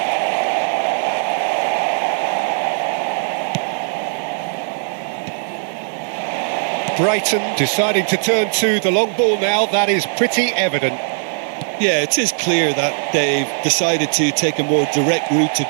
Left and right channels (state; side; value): silent; left; digital silence